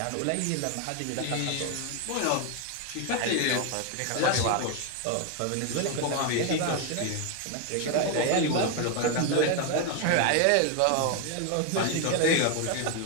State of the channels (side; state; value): both; different; correlation 0.01